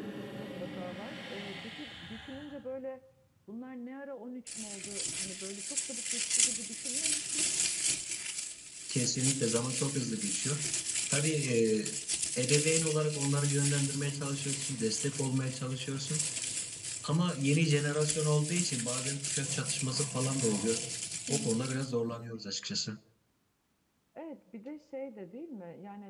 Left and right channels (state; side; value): identical; both; correlation 1.00